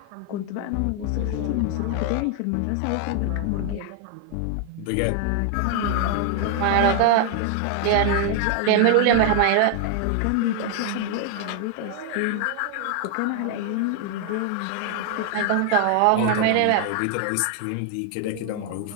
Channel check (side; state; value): both; different; correlation 0.00